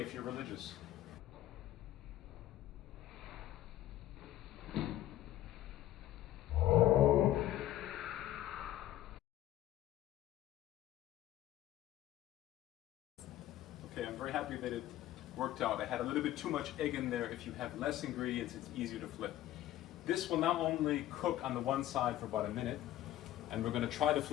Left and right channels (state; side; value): quieter; right; 13.8 dB